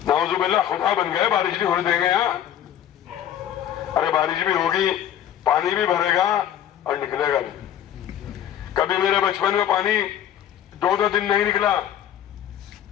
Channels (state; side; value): quieter; right; 10.7 dB